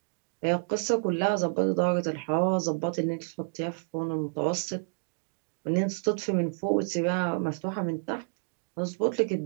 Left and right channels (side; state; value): left; silent; 58 dB below the other